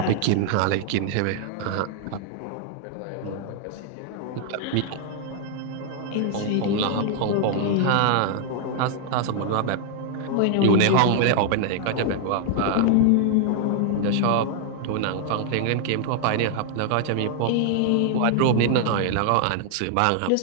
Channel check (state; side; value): different; both; correlation 0.00